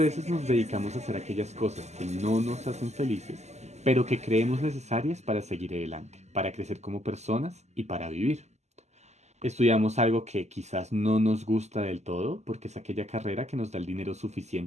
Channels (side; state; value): left; late; 0.33 ms